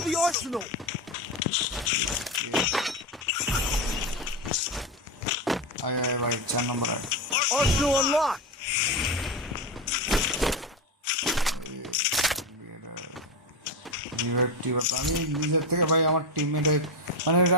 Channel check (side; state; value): both; normal; correlation 0.15